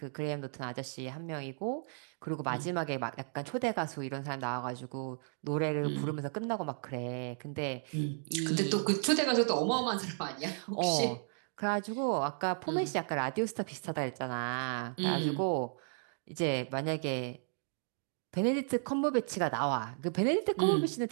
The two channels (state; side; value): silent; left; digital silence